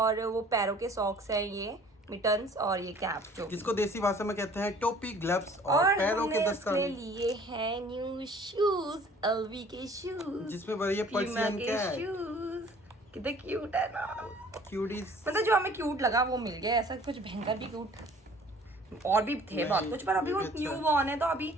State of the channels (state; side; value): normal; both; correlation 0.52